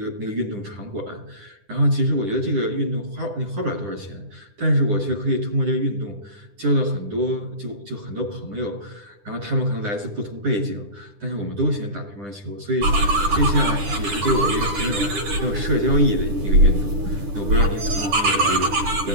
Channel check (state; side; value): late; left; 10 ms